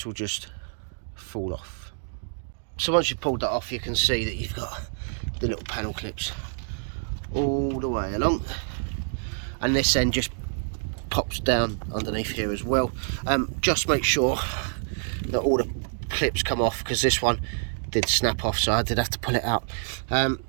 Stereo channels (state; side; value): silent; left; digital silence